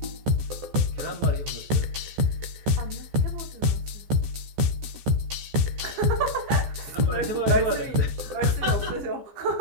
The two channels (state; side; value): late; left; 14 ms